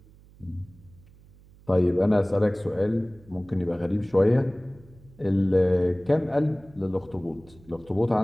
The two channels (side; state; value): right; noise; hum, 25 dB below the sound